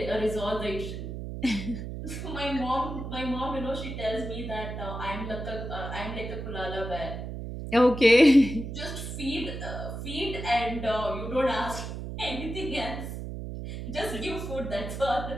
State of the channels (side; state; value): right; noise; hum, 7 dB below the sound